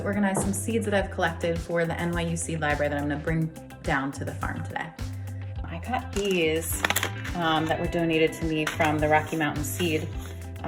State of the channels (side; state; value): both; identical; correlation 1.00